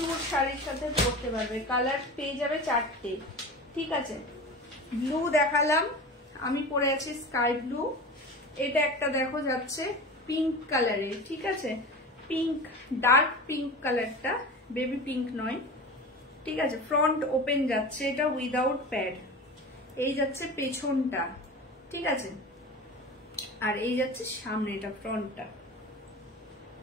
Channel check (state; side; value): normal; both; correlation 0.32